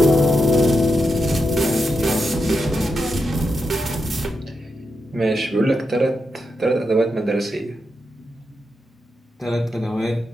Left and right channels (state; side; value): normal; both; correlation 0.85